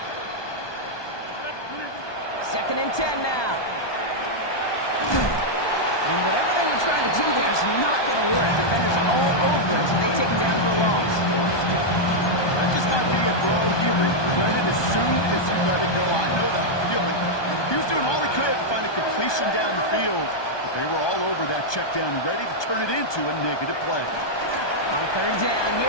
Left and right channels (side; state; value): right; late; 1.2 ms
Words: Second and 10 now. trying to do there is not going to work. Defenders are all over it, so they take him down for a loss. That just might be a throw he regretted as soon as you let it go. I know that feeling. He was doing all he could to find a completion down the field, but they were all over that check down, ready to turn it into a negative play. On third down,